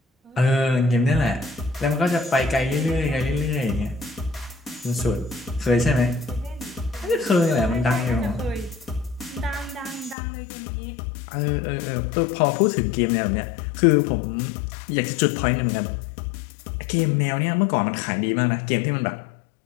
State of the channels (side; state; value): right; drops out; at 10.2 s